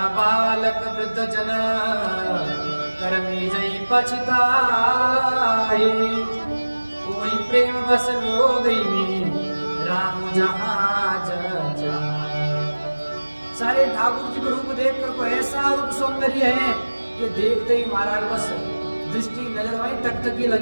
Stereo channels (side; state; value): both; inverted; correlation -1.00